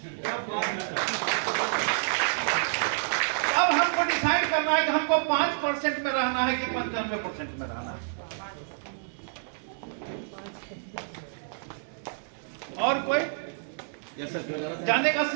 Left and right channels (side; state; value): left; silent; digital silence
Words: अब हमको डिसाइड करना है कि हमको 5% में रहना है कि 95% में रहना है। और कोई जाने का